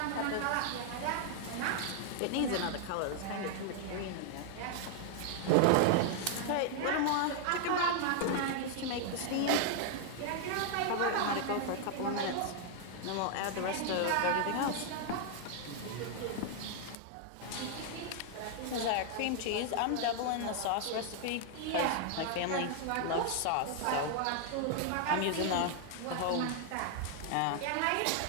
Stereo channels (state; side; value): different; both; correlation 0.00